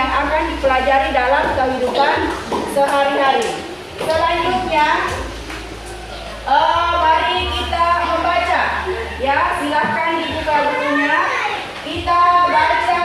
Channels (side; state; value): both; identical; correlation 1.00